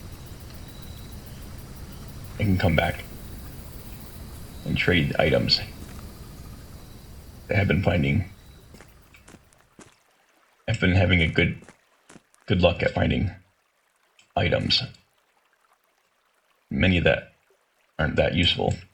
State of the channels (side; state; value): both; identical; correlation 1.00